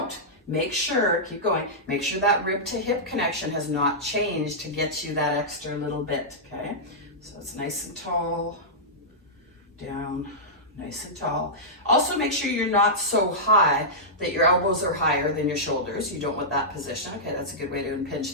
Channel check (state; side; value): normal; both; correlation -0.12